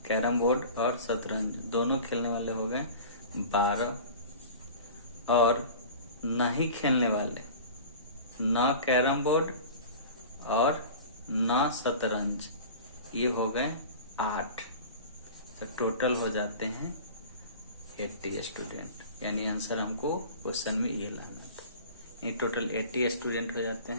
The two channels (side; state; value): both; inverted; correlation -0.38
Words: कैरम बोर्ड और शतरंज दोनों खेलने वाले हो गए 12, और नहीं खेलने वाले ना कैरम बोर्ड और ना शतरंज ये हो गए 8। तो टोटल हो जाते हैं 80 स्टूडेंट, यानी आंसर हमको क्वेश्चन में ये लाना था। ये टोटल 80 स्टूडेंट हो जाते